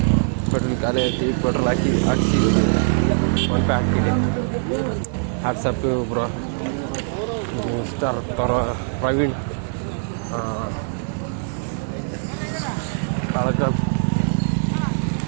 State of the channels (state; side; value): silent; left; 55 dB below the other